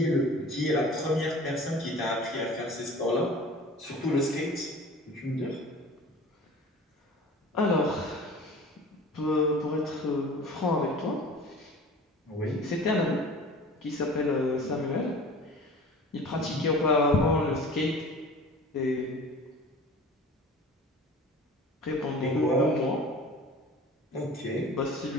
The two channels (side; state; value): both; normal; correlation 0.42